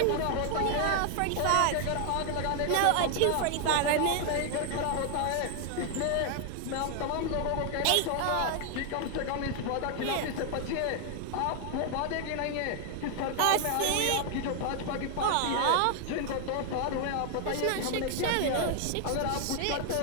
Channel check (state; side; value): different; both; correlation 0.00